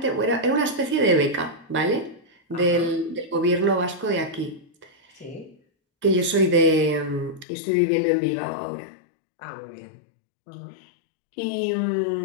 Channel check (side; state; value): right; drops out; at 7.5 s